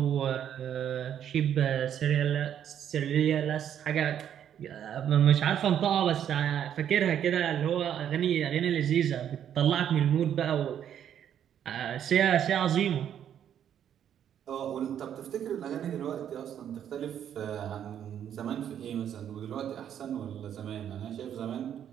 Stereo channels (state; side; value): quieter; left; 9.6 dB